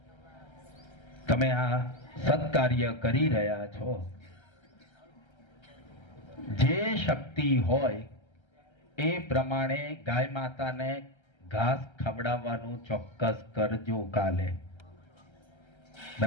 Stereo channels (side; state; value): right; late; 1.3 ms